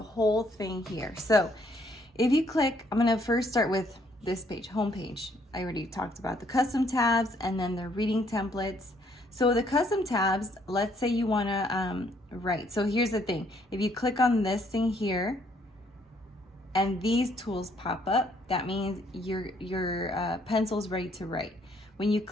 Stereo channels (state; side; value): normal; both; correlation 0.67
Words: whole thing here. So if you click, I'm gonna first start with this page, home page. I already talked about the custom tabs and then the reading templates. So the custom tabs, let's say you wanna write. So here's the thing, if you click on this thing here and these tools pop up, that means your pencil's ready to write. When you